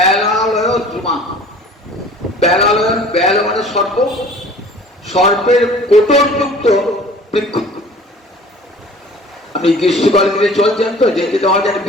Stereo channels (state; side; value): normal; both; correlation 0.47